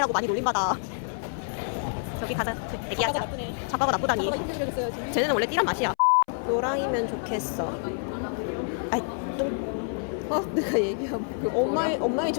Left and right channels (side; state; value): right; silent; 60 dB below the other